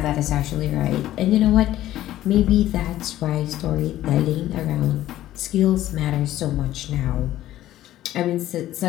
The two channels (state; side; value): quieter; right; 13.9 dB